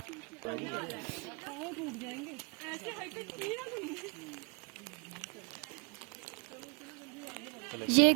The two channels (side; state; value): left; quieter; 33.8 dB